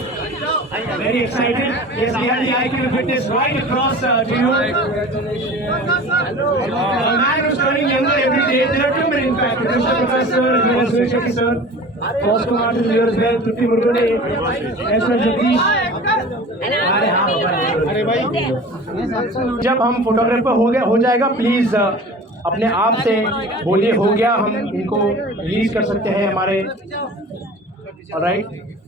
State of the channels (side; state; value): both; normal; correlation 0.39